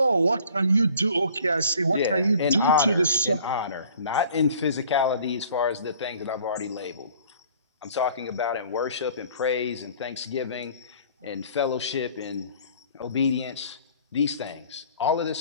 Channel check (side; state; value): both; inverted; correlation -0.52